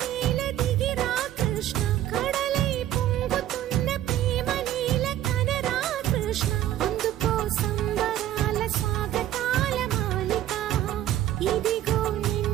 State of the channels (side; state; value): left; quieter; 12.7 dB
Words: దిగిరా కృష్ణ కడలై పొంగుతున్న ప్రేమ నీల కనరా కృష్ణ అందుకో సంబరాల స్వాగతాల మాలిక ఇదిగో